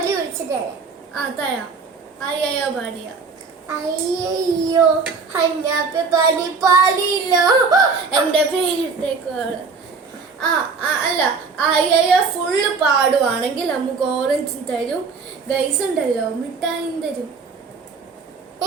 ഒഴിച്ചിട്ടേ തരാം. ആയ്യോ പാടിയ. അയ്യോ ഹഞ്ഞാപ്പി പാടിയില്ലോ. എൻ്റെ പേരിട്ടേക്കാള്. അല്ല, ആയ്യോ ഫുള്ള് പാടുവാണെങ്കിൽ നമുക്ക് ഓറഞ്ചും തരും. ഗൈസ് ഉണ്ടല്ലോ, മിഠായും തരും.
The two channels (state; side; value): quieter; left; 4.8 dB